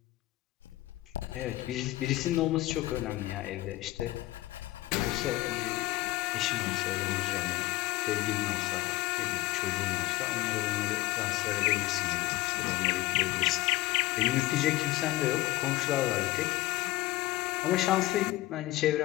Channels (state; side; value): quieter; right; 18.2 dB